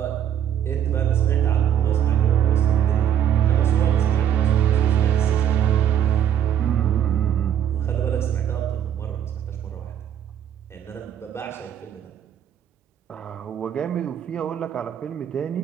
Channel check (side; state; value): left; quieter; 9.6 dB